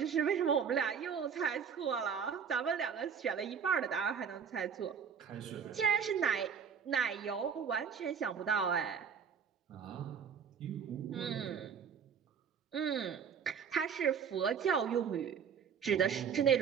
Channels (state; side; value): quieter; left; 6.9 dB